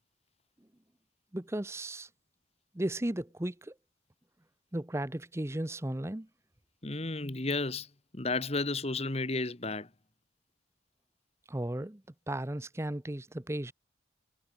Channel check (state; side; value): normal; both; correlation 0.63